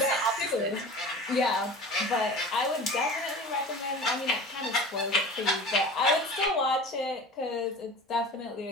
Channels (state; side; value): normal; both; correlation 0.38